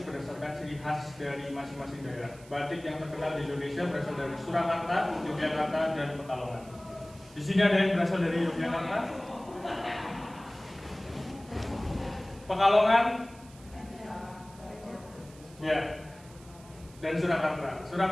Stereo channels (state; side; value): noise; right; hiss, 23 dB below the sound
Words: berdasarkan ciri khas dari masing-masing daerah. Batik yang terkenal di Indonesia berasal dari Surakarta, Yogyakarta, dan Pekalongan. Di sini ada yang berasal dari Yogyakarta, Pekalongan, ya, dan Surakarta.